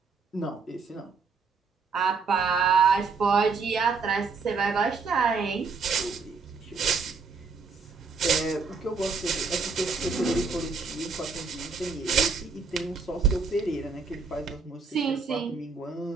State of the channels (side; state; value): left; quieter; 4.8 dB